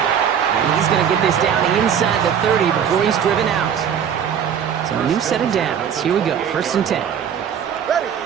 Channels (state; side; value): quieter; left; 8.2 dB